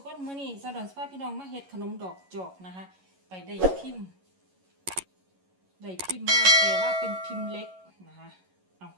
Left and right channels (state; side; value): late; left; 11 ms